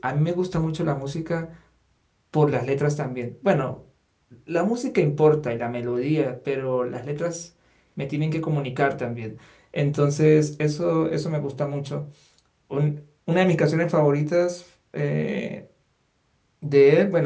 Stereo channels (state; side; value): identical; both; correlation 1.00